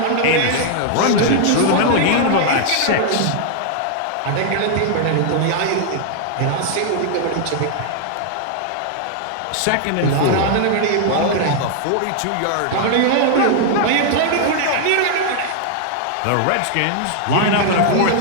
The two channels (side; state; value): both; different; correlation -0.01